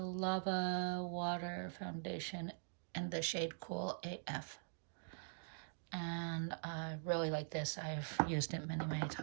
Water Foundation in the shade Cool AF. And I really like this. I've used it many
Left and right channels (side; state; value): left; silent; digital silence